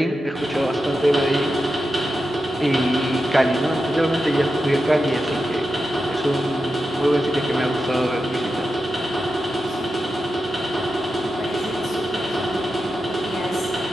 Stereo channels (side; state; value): both; normal; correlation 0.90